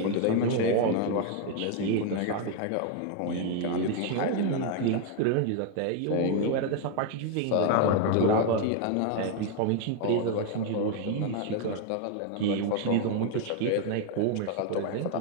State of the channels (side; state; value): both; different; correlation 0.00